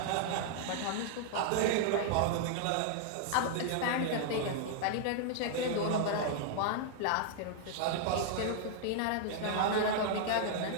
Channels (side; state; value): both; different; correlation 0.00